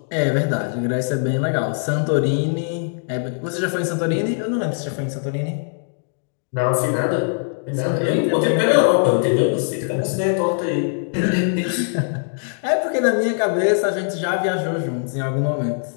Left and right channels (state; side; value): silent; right; digital silence